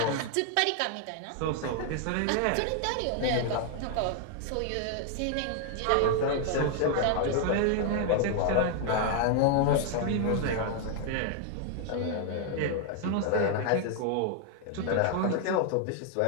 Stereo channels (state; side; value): different; both; correlation 0.00